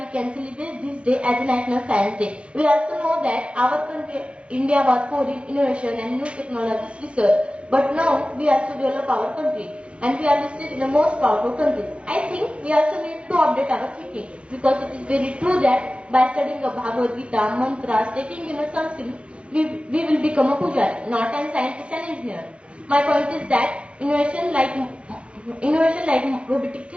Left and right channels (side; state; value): left; late; 0.060 ms